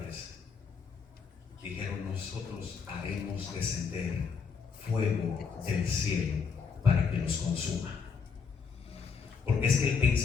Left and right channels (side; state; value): right; quieter; 5.8 dB